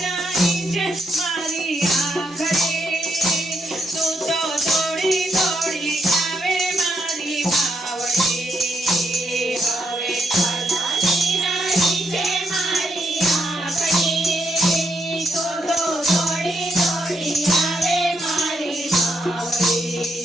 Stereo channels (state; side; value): normal; both; correlation 0.78